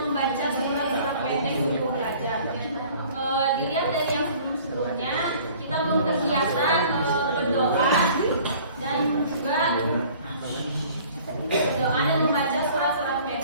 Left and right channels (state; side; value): inverted; both; correlation -0.51